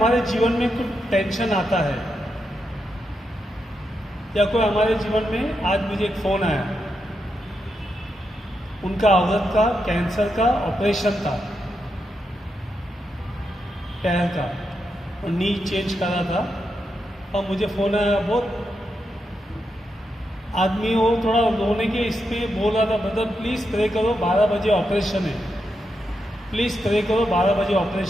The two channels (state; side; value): normal; both; correlation 0.84